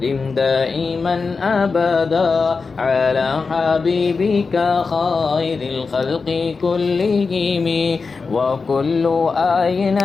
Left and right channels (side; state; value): right; quieter; 4.6 dB